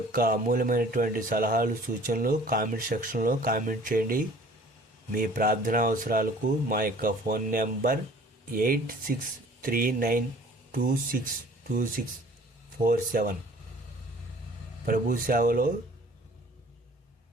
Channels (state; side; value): normal; both; correlation 0.51